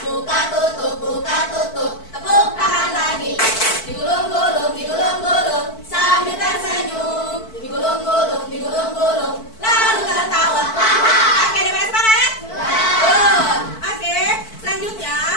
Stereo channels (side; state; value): right; late; 4.5 ms